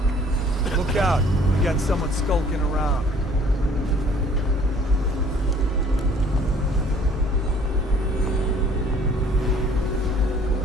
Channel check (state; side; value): normal; both; correlation 0.56